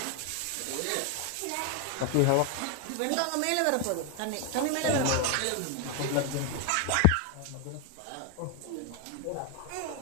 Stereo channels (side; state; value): both; different; correlation 0.01